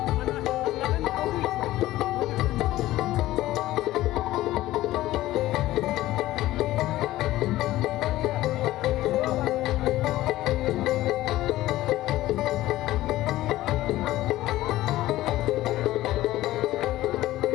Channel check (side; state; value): right; quieter; 15.9 dB